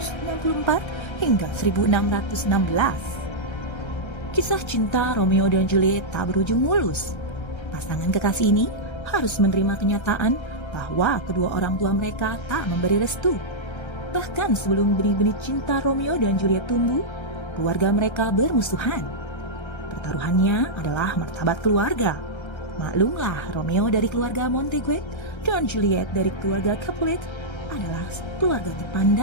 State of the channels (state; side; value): late; right; 1.3 ms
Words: hingga 1616. Kisah cinta Romeo dan Juliet tak berujung mulus. Pasangan kekasih ini harus menerima kenyataan bahwa kedua orang tua mereka tak memberi restu. Bahkan sebelum benih-benih cinta Romeo dan Juliet tumbuh, keluarga mereka bermusuhan. Pertaruhannya adalah martabat keluarga. Maklumlah, Romeo dari keluarga Montague dan Juliet dari keluarga Capulet adalah keluarga